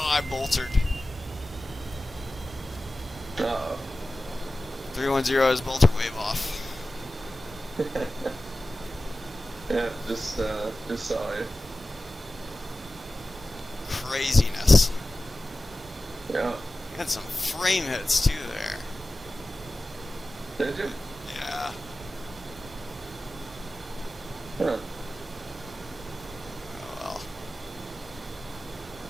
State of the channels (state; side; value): normal; both; correlation 0.96